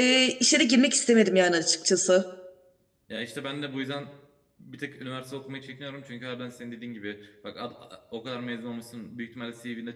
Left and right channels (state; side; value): identical; both; correlation 1.00